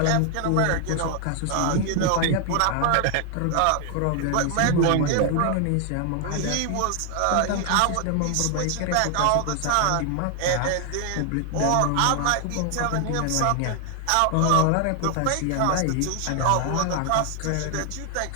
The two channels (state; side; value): different; both; correlation 0.00